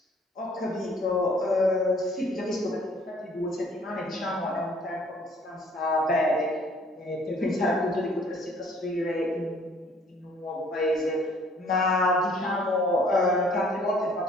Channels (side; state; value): both; normal; correlation 0.58